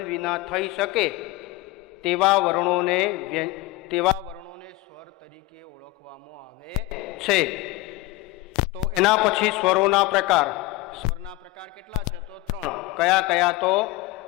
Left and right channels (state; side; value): quieter; right; 19.3 dB